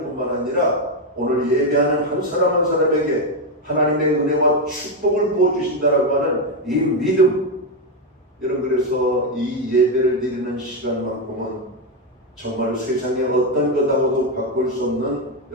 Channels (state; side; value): normal; both; correlation 0.06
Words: 뿐만 아니라 오늘 예배하는 한 사람 한 사람에게 하나님의 은혜와 축복을 부어주신다라고 하는 이 믿음. 여러분 그래서 이 예배를 드리는 시간만큼은 정말 세상에 어떤 것하고도 바꿀 수 없는